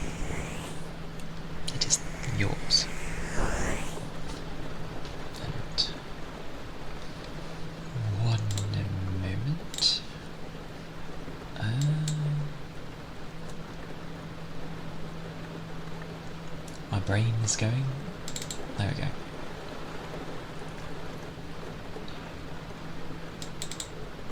It is yours. And one moment. My brain is going. There we go.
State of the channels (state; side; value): identical; both; correlation 1.00